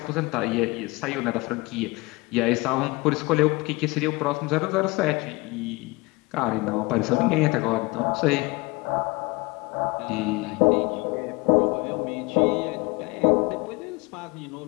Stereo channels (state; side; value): quieter; right; 24.1 dB